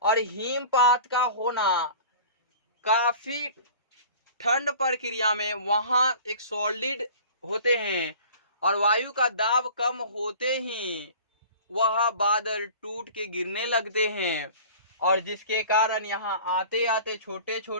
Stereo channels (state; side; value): inverted; both; correlation -0.43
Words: और हिमपात का होना काफी ठंड प्रक्रिया में, वहां एक सॉलिड होते हैं और वायु का दाब कम होते ही वह बादल टूट के गिरने लगते हैं, और जिसके कारण यहाँ आते आते छोटे